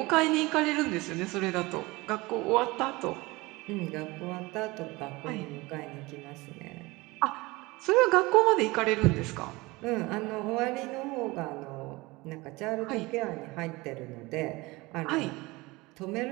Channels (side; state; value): left; quieter; 22.4 dB